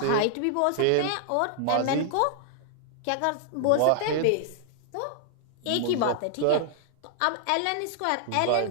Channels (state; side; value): different; both; correlation -0.01